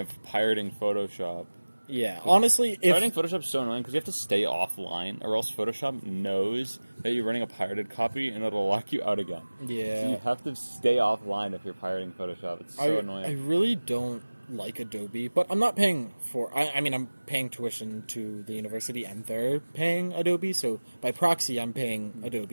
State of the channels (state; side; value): inverted; both; correlation -1.00